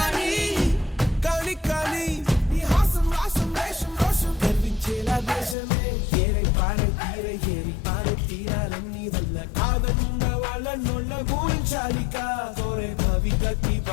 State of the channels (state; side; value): drops out; right; at 5.6 s